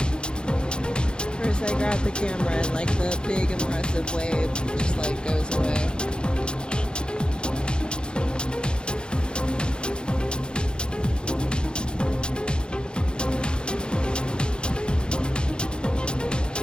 First I grab the camera and like the big impressive wave just like goes away.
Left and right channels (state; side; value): late; right; 0.050 ms